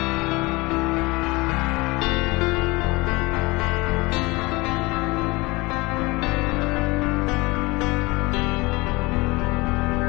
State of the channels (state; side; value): quieter; right; 23.6 dB